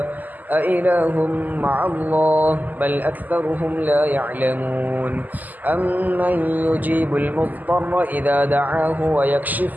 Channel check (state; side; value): late; left; 0.083 ms